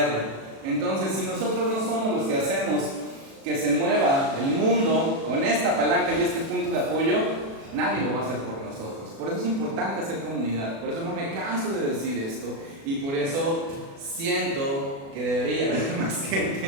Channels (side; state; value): left; late; 36 ms